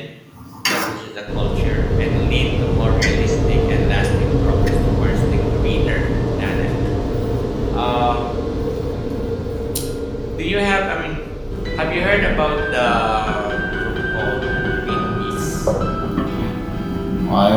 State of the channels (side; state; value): both; identical; correlation 1.00